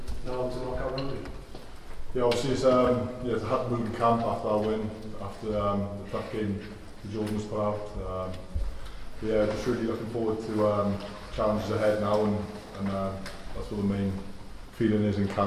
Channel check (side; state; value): both; identical; correlation 1.00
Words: now to knockout rugby. Yeah, obviously it's a hard mood in camp after our win, after the tough game the Jordan was put out. Yeah, just really looking forward to challenges ahead now, and that's what the main feeling is in